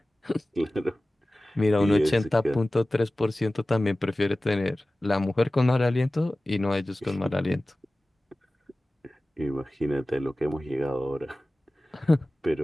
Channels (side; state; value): both; normal; correlation 0.97